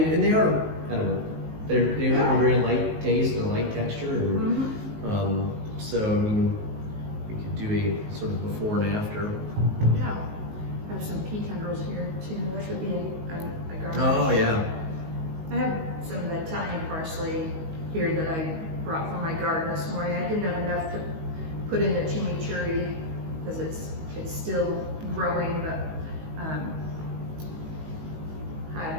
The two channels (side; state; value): left; late; 19 ms